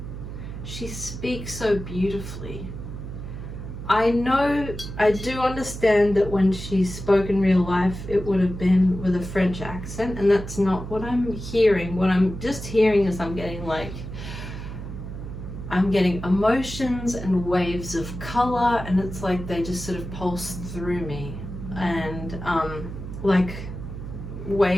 She speaks so beautifully. I do understand that when she spoke in real life, it would have been with a French accent, and that's not what I'm hearing. What I'm just hearing is I'm getting emotions and waves of color, and it's like they just sort of pulse through me, and like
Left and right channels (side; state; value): right; noise; hum, 9 dB below the sound